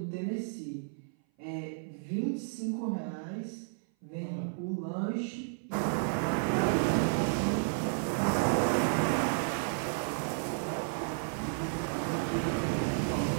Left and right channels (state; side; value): silent; left; 56 dB below the other